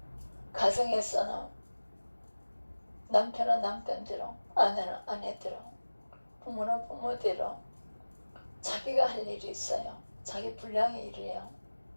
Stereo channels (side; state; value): both; inverted; correlation -1.00